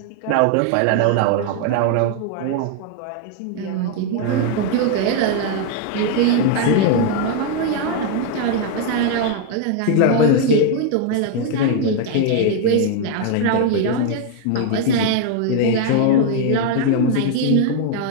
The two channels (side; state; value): both; different; correlation 0.01